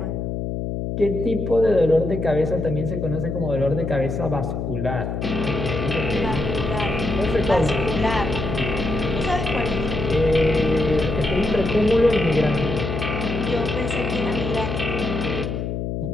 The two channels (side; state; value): left; noise; hum, 3 dB below the sound